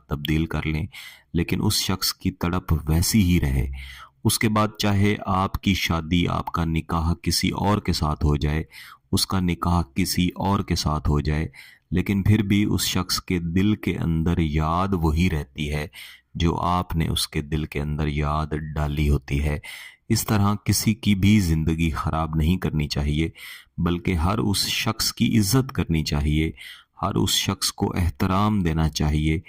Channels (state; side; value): identical; both; correlation 1.00